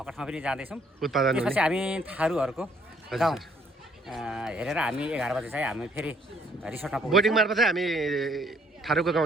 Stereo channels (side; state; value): both; normal; correlation 0.65